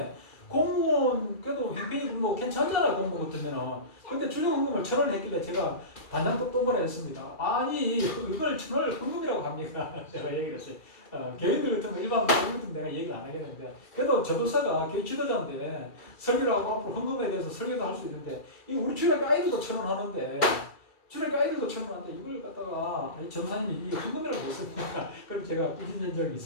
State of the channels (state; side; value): late; right; 2.3 ms